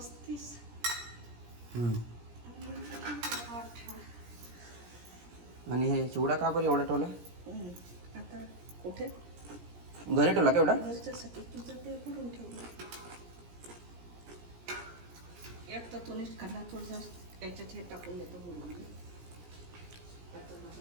आणि हे चिवडा का बरं एवढा ठेवला? आता कुठे घरी ठेवला का एवढा? घरच्यासाठी तुझं ते करून ठेवलं. एक तर तुम्हीच खाल्ला थोडंसं याच्यात हे टाकून देतो बोलून.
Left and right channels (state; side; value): late; left; 17 ms